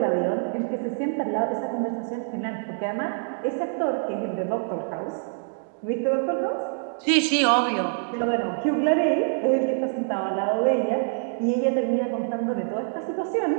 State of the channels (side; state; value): left; silent; 61 dB below the other